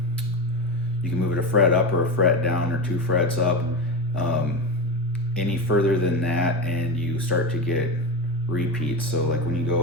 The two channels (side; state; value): both; normal; correlation 0.21